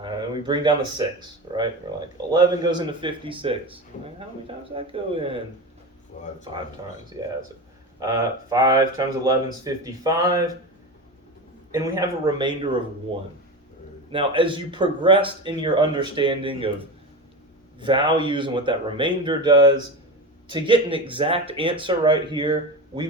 And we bring down the 6, right? We're like, 11 goes into 56. How many times does that go in? 5 times, yeah. So, 5 times 11 is 55. And we have a remainder of 1. Now, as you progressed in your understanding of values and what that remainder does, to get an exact answer right here, we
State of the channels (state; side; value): normal; both; correlation 0.24